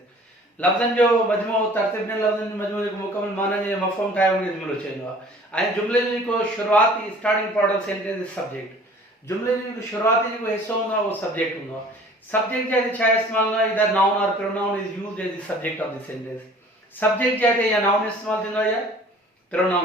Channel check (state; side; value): normal; both; correlation 0.49